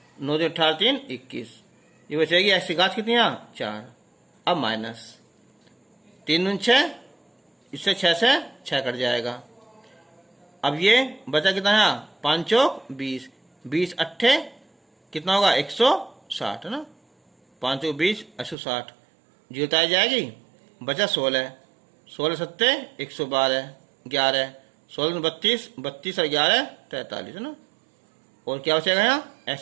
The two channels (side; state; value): left; drops out; at 18.6 s